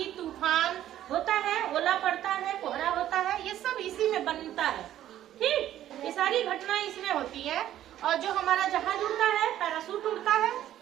तूफान होता है, ओला पड़ता है, कोहरा होता है, ये सब इसी में बनता है। ठीक, ये सारी घटनाएं इसमें होती है। और जो हमारा जहाज उड़ता है, पैराशूट उड़ता है,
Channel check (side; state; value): left; quieter; 12.3 dB